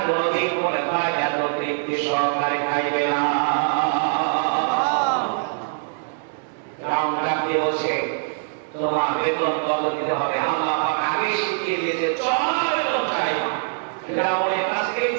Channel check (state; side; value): silent; left; digital silence